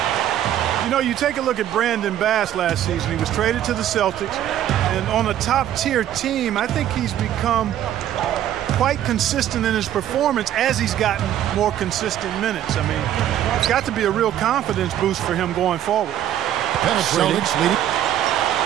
You know, you take a look at Brandon Bass last season. He was traded to the Celtics. And on a top-tier team, I think he's become quite consistent in his performance as he's gotten more consistent minutes. I mean, it's got to be a real confidence boost for him going forward. Celtics leading.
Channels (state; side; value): quieter; left; 11.4 dB